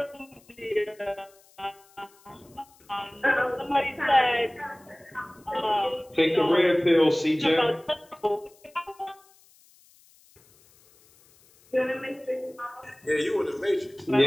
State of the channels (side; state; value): left; noise; hiss, 29 dB below the sound